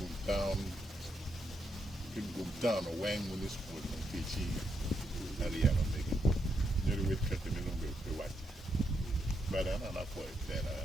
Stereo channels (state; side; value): normal; both; correlation 0.80